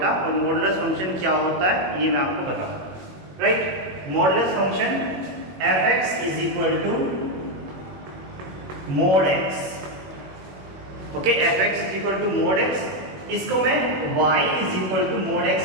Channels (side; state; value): left; late; 21 ms